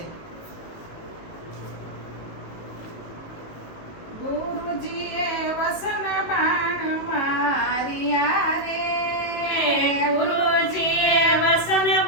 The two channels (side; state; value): right; late; 19 ms